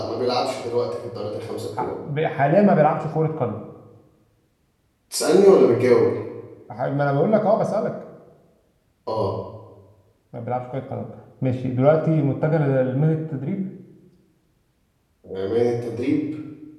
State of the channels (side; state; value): both; identical; correlation 1.00